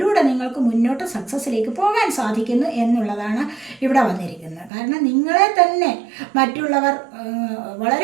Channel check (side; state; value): left; drops out; at 4.7 s